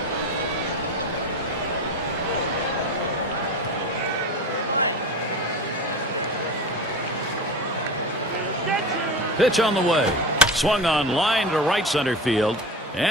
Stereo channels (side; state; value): both; normal; correlation 0.30